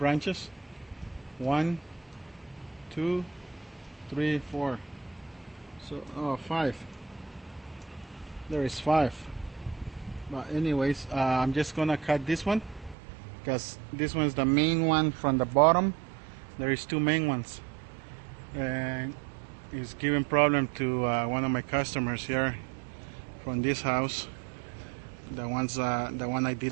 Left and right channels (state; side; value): drops out; left; at 13.0 s